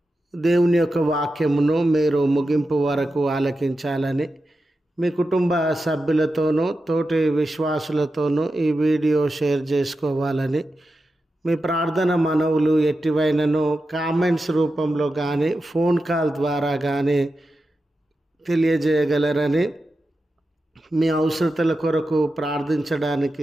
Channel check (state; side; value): normal; both; correlation 0.91